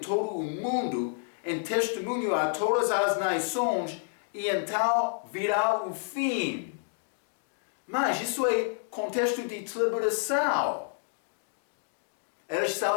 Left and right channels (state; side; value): silent; right; digital silence